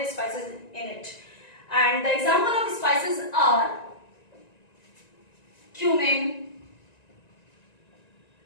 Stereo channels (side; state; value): right; late; 1.9 ms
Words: spices in it. And the example of spices are cumin,